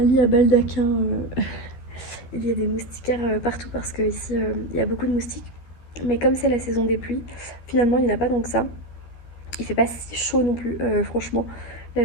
à baldaquin. Il y a des moustiquaires partout, parce que ici il y a beaucoup de moustiques. Mais comme c'est la saison des pluies, finalement il n'y en a pas tant que ça. Il fait pas si chaud non plus, franchement.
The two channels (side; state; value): right; late; 13 ms